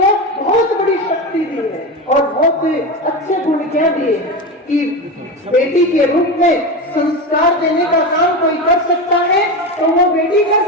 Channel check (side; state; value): both; normal; correlation 0.20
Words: बहुत बड़ी शक्ति दी है और बहुत अच्छे गुण क्या दिए कि बेटी के रूप में संस्कार देने का काम कोई कर सकता है तो वो बेटी कर